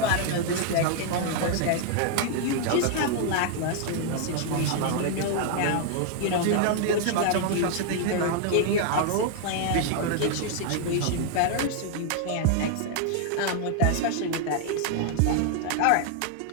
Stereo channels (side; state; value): both; different; correlation 0.00